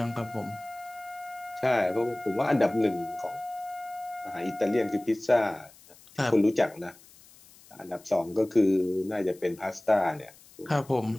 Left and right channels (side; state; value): left; noise; hiss, 24 dB below the sound